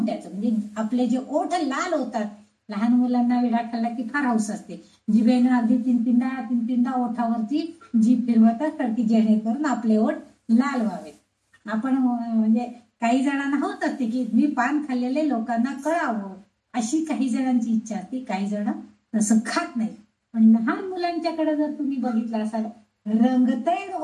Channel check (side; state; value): both; identical; correlation 1.00